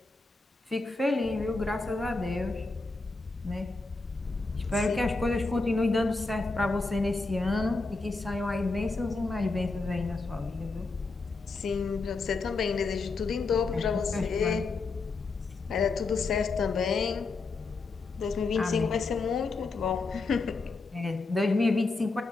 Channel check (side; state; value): right; quieter; 3.8 dB